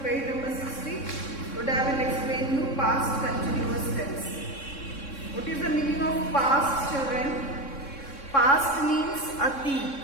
page number 60. Today I will explain you past continuous tense. What is the meaning of past, children? Past means atit.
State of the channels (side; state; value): right; late; 3.6 ms